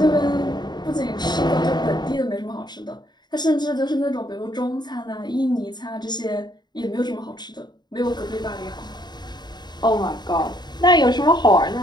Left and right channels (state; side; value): late; right; 0.21 ms